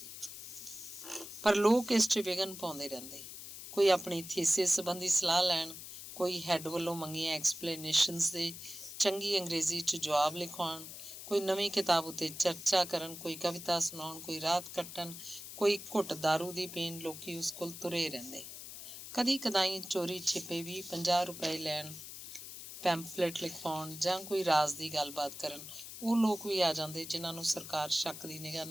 ਪਰ ਲੋਕ ਇਸ 'ਚ ਵਿਘਨ ਪਾਉਂਦੇ ਰਹਿੰਦੇ। ਕੋਈ ਆਪਣੀ ਥੀਸਿਸ ਸੰਬੰਧੀ ਸਲਾਹ ਲੈਣ, ਕੋਈ ਹੈੱਡ ਵੱਲੋਂ ਮੰਗੀਆਂ ਐਕਸਪਲੇਨੇਸ਼ਨਸ ਦੇ ਚੰਗੀ ਅੰਗਰੇਜ਼ੀ 'ਚ ਜਵਾਬ ਲਿਖਵਾਉਣ, ਕੋਈ ਨਵੀਂ ਕਿਤਾਬ ਉੱਤੇ ਚਰਚਾ ਕਰਨ, ਕੋਈ ਕਵਿਤਾ ਸੁਣਾਉਣ, ਕੋਈ ਰਾਤ ਕੱਟਣ, ਕੋਈ ਘੁੱਟ ਦਾਰੂ ਦੀ ਪੀਣ। ਲੋਕੀ ਉਸ ਕੋਲ ਤੁਰੇ ਰਹਿੰਦੇ। ਕਦੀ ਕਦਾਈ ਚੋਰੀ ਛਿਪੇ ਵੀ 50 ਰੁਪਏ ਲੈਣ, ਪੈਂਫਲੇਟ ਲਿਖਵਾਉਣ, ਜਾਂ ਕੋਈ ਰਾਜ਼ ਦੀ ਗੱਲਬਾਤ ਕਰਨ। ਉਹ ਲੋਕ ਵੀ ਆ ਜਾਂਦੇ ਜਿਨ੍ਹਾਂ ਨੂੰ ਸਰਕਾਰ ਸ਼ੱਕ ਦੀ ਨਿਗਾਹ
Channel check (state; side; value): noise; left; hiss, 11 dB below the sound